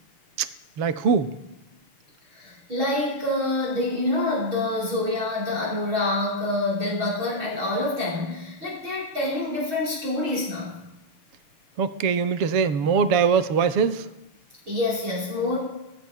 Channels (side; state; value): left; late; 6.3 ms